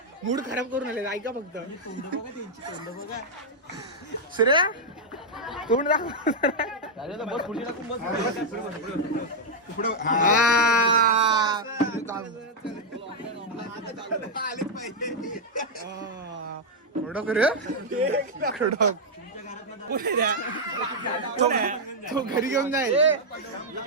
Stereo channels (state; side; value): normal; both; correlation -0.02